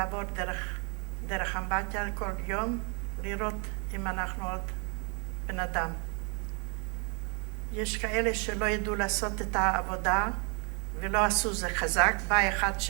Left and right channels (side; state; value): left; quieter; 35.2 dB